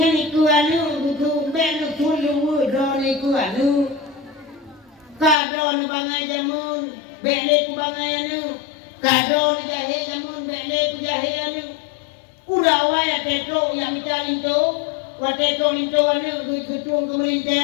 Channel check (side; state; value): right; drops out; at 5.4 s